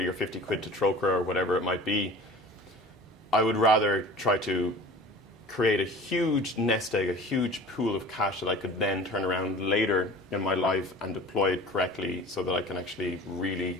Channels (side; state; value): both; normal; correlation 0.41